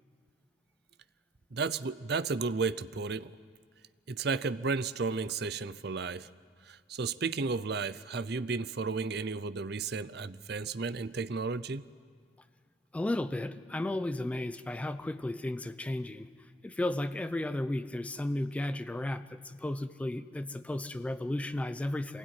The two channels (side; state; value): both; normal; correlation 0.59